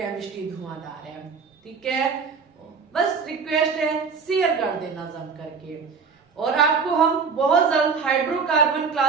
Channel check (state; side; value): quieter; left; 5.4 dB